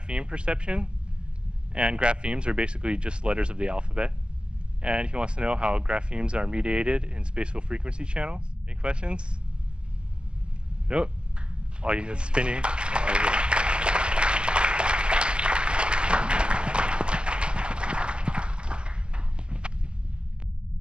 perception. And graphemes are basically just letters of the alphabet. And he wants to know how graphemes are mediated in spatial frequency channels. Any questions? Nope. Oh, you spinning.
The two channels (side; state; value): left; late; 0.049 ms